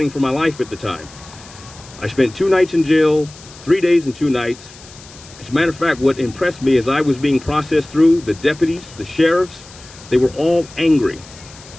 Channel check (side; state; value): left; noise; hiss, 20 dB below the sound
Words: for my life at the time. I spent 2 nights in jail, 3 days and 2 nights. As a matter of fact, what impressed me as I was being processed through, the deputies, the sheriffs, they were all angry.